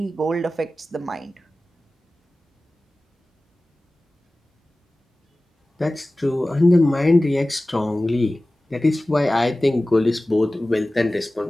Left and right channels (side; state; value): both; normal; correlation 0.97